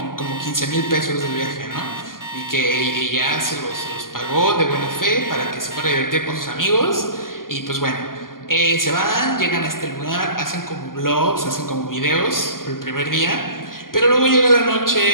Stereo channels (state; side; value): late; right; 0.91 ms